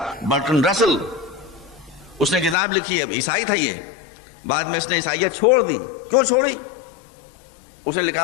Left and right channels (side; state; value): right; drops out; at 2.6 s